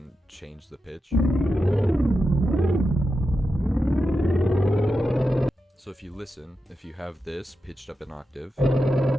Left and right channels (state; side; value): normal; both; correlation 0.89